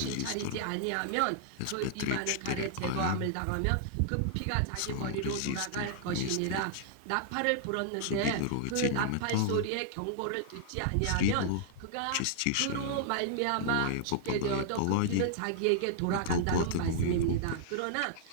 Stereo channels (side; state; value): both; different; correlation -0.01